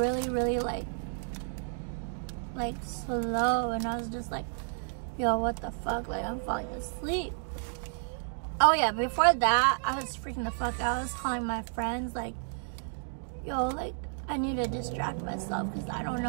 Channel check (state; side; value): silent; left; digital silence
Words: really like slow, and I was just like, yo, what the fuck? Like, I'm falling asleep. Oh yeah, before that, I was freaking the fuck out. I was calling my friends like, yo, like, I need to distract myself because I don't